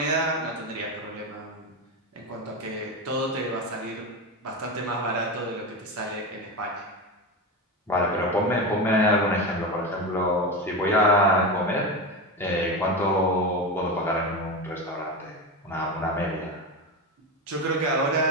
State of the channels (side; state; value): both; normal; correlation 0.20